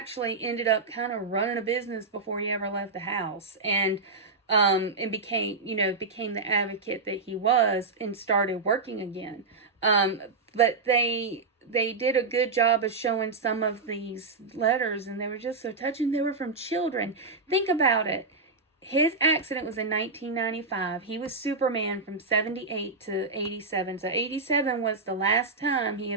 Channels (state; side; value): quieter; left; 4.0 dB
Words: ended up kind of running a business before he ever left the house, and became the advocate that he was, and started working again. But they did a good job of showing some of these letters, and they were just so touching. They were from children. Think about it. His accident was in 1995. He was Superman from 78 to 87. So 87 was the last time he